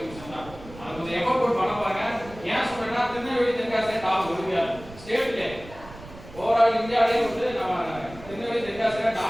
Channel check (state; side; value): noise; right; rumble, 17 dB below the sound